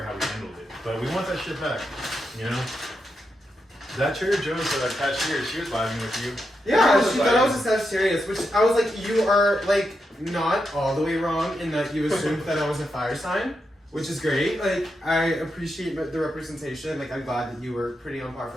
how we handled it, but we want that shit back, you know? That Trader Joe's cashier, she was vibing with you. Yeah, she thought I was a Sagittarius, which I was like, you are like not all the way wrong in that you assumed that I was a fire sign, which is great. Like, I appreciate the representation. Like, I'm glad that you were pretty on par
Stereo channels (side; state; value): both; normal; correlation 0.85